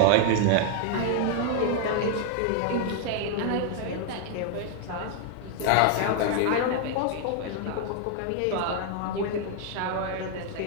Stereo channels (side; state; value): both; different; correlation 0.00